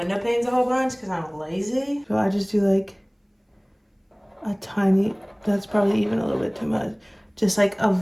panes a whole bunch, because I'm lazy. So I just do like a tiny, that's probably even a little bit too much. Just like a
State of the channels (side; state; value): both; identical; correlation 1.00